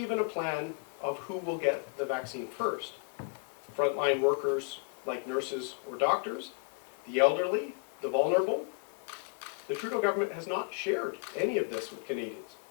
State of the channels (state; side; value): quieter; right; 38.1 dB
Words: a plan of who will get the vaccine first. Frontline workers like nurses or doctors, the elderly, the vulnerable. The Trudeau government has not shared any of this with Canadians.